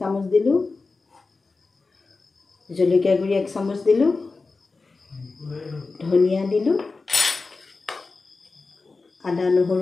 দিলোঁ, জলকীয়া গুড়ি 1 চামুচ দিলোঁ, ধনিয়া দিলোঁ, আদা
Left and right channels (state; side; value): quieter; right; 3.9 dB